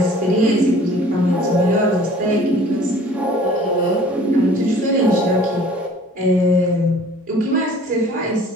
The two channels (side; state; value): both; normal; correlation 0.50